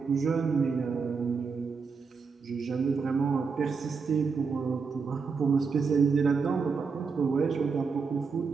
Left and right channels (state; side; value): quieter; left; 5.2 dB